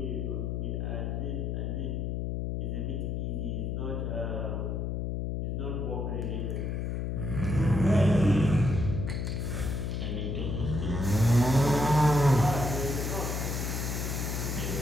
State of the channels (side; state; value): left; noise; hum, 1 dB below the sound